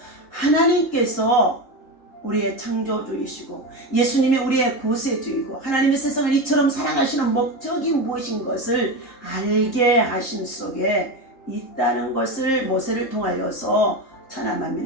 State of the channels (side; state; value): right; late; 3.7 ms